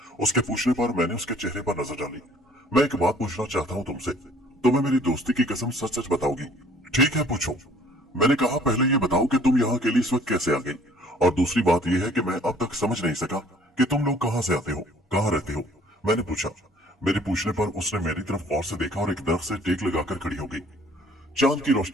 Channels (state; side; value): normal; both; correlation 0.56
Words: उसके पूछने पर मैंने उसके चेहरे पर नजर डाली। मैं एक बात पूछना चाहता हूँ तुमसे। तुम्हें मेरी दोस्ती की कसम सच सच बताओगी? ठीक है, पूछो। मैंने कहा, पहले ये बताओ कि तुम यहाँ अकेली इस वक्त कैसे आ गई, और दूसरी बात यह है कि मैं अब तक समझ नहीं सका कि तुम लोग कहाँ से आते हो, कहाँ रहते हो, मैंने पूछा। मेरे पूछने पर उसने मेरी तरफ गौर से देखा और एक दरख्त से टेक लगाकर खड़ी हो गई। चांद की